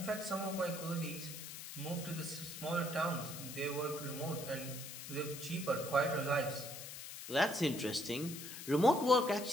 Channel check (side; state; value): left; noise; hiss, 10 dB below the sound